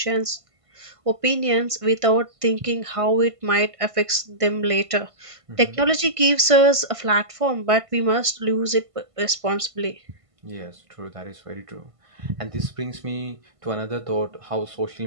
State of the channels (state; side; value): late; left; 1.5 ms